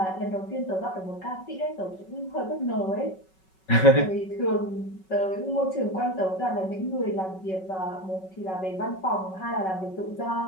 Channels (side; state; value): right; late; 5.3 ms